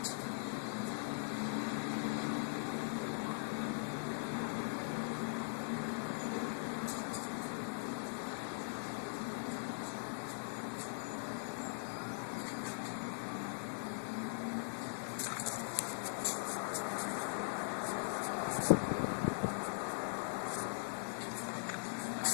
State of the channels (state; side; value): silent; right; digital silence